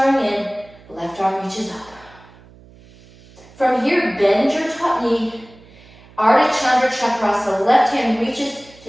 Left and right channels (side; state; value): right; noise; hum, 24 dB below the sound